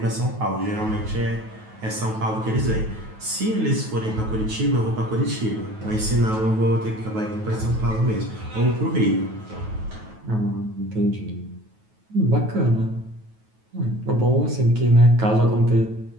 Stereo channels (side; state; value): left; late; 9.3 ms